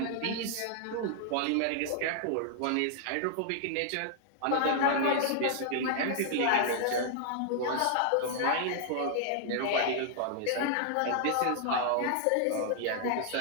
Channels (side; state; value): both; different; correlation 0.00